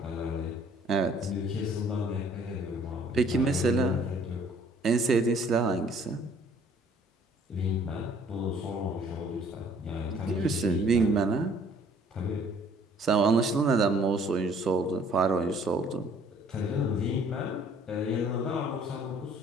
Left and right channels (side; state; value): both; normal; correlation 0.58